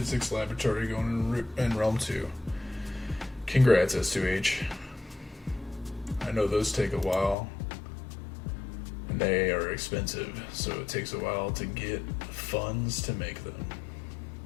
laboratory going in Realm 2. Congrats, S2H. I know those take a while. And they are expensive, so it takes a while to get funds to make them.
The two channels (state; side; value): drops out; right; at 7.4 s